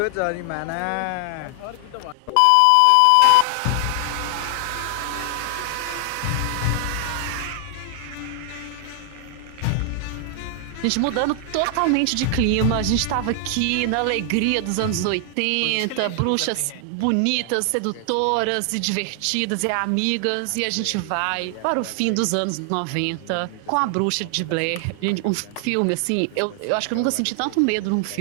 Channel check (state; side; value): different; both; correlation 0.00